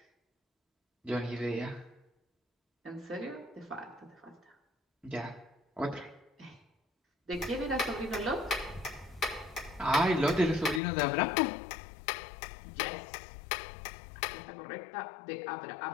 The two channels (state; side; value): drops out; right; at 10.8 s